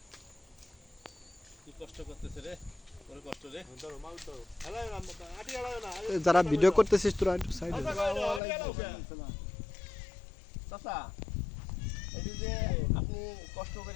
কি কষ্ট করতেছে রে, ওরে কষ্ট রে। ধরো মাল ধরো, হেলায় না, আটি হেলায় না। যারা ভিডিও করতেছিস তোরা একটু সাইডে চাচা, এই যে আপনি কষ্ট করে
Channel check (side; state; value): right; drops out; at 8.4 s